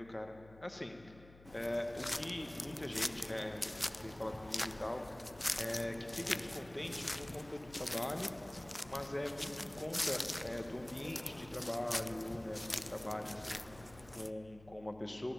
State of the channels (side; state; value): left; noise; hum, 20 dB below the sound